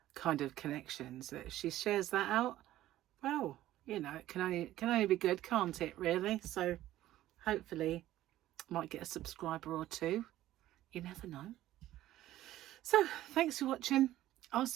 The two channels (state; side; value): quieter; left; 14.3 dB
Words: kind of connections that if she shares that out, well, you know, it can only be good, can't it, really? So hopefully I might get a subscriber or two. You never know. So thanks for watching. I'll